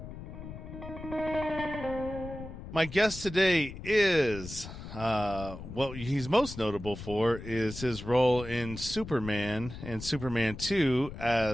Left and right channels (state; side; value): noise; left; rumble, 11 dB below the sound